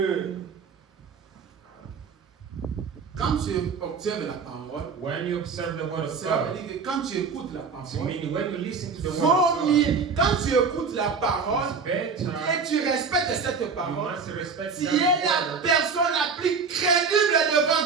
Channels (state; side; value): quieter; left; 5.3 dB